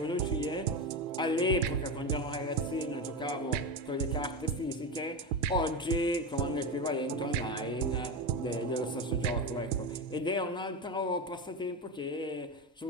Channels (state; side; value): normal; both; correlation 0.18